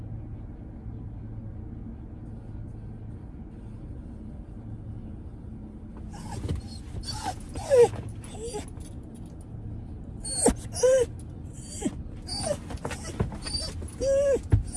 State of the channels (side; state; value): both; identical; correlation 1.00